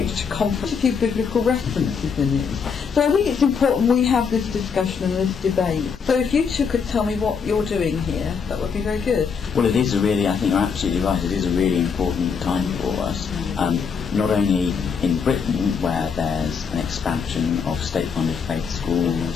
to conference, a few biblical references in it. So I think it's important we have this discussion and this debate. So if you two could tell me what you're doing here, that would be very good. Well, it is a really, I think you're absolutely right, it is a really important time for us. Not only in Britain, where there's an expansion of state-funded faith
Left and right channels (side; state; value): right; quieter; 6.1 dB